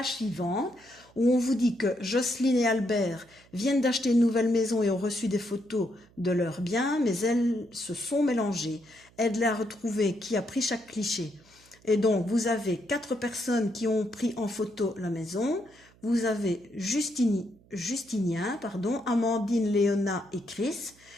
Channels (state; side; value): noise; right; hum, 28 dB below the sound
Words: suivante où on vous dit que Jocelyne et Albert viennent d'acheter une nouvelle maison et ont reçu des photos de leurs biens, mais elles se sont mélangées. Aide-les à retrouver qui a pris chaque cliché. Et donc, vous avez 4 personnes qui ont pris en photo la maison. Vous avez Justinien, Amandine, Léona et Chris.